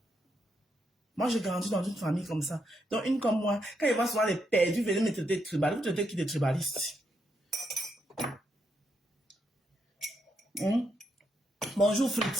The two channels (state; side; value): normal; both; correlation 0.79